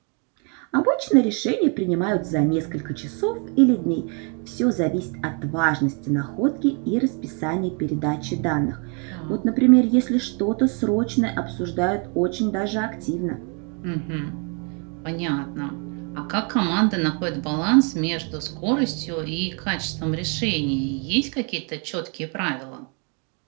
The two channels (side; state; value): left; quieter; 36.3 dB